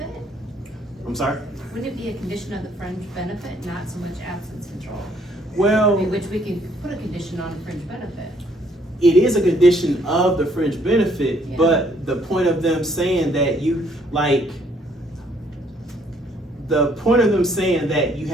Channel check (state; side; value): normal; both; correlation 0.66